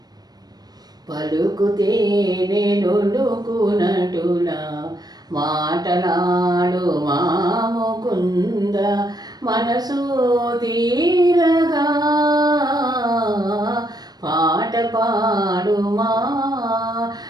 పలుకుతే నొలుకునటులా, మాటలాడు మా ముకుంద, మనసు తీరగా. పాట పాడుమా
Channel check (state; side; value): late; left; 0.19 ms